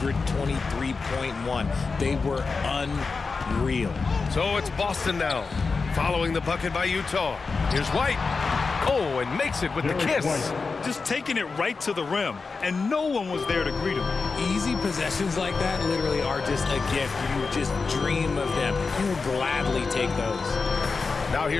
They were unreal. So it's Boston now, following the bucket by Utah. Here's White. Oh, and makes it with the kiss. Just taking it right to the rim, and no one was there to greet him. Easy possessions like that literally are just a gift. You just dream of them. You'll gladly take those. Now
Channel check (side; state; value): right; quieter; 4.5 dB